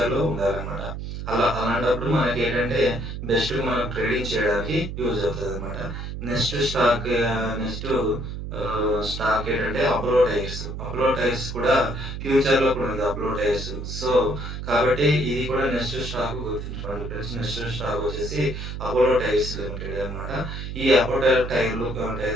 ఉండాలన్నమాట. అలాంటప్పుడు మనకేంటంటే బెస్ట్ మనం ట్రేడింగ్ చేయడానికి యూజ్ అవుతదనమాట. నెక్స్ట్ స్టాక్ స్టాక్ ఏంటంటే అపోలో టైర్స్. అపోలో టైర్స్ కూడా ఫ్యూచర్‌లో కూడా ఉంది అపోలో టైర్స్. సో, కాబట్టి ఇది కూడా నెక్స్ట్ స్టాక్ గుర్తుంచుకోండి ఫ్రెండ్స్. నెక్స్ట్ స్టాక్ వచ్చేసి అపోలో టైర్స్ లిమిటెడ్ అనమాట. ఈ అపోలో టైర్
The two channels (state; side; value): noise; right; hum, 7 dB below the sound